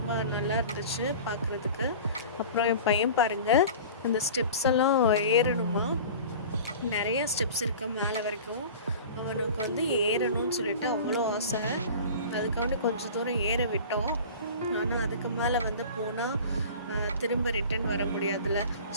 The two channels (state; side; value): inverted; both; correlation -0.39